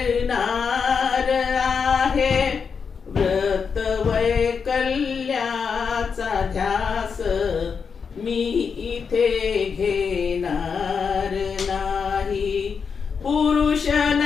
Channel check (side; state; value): right; quieter; 6.0 dB